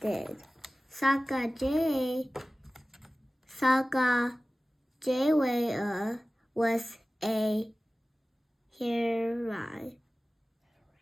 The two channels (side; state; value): both; normal; correlation 0.97